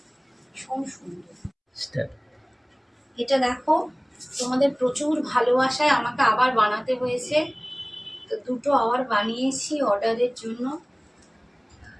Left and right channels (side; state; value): both; identical; correlation 1.00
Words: ভীষণ সুন্দর। এটা দেখো, তোমাদের প্রচুর ভালোবাসায় আমাকে আবার বানাতে হয়েছে, তো দুটো আবার বানিয়েছি অর্ডারের জন্য।